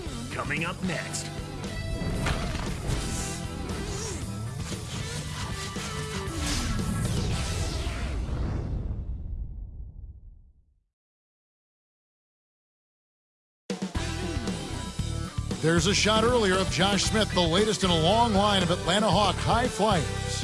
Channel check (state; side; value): identical; both; correlation 1.00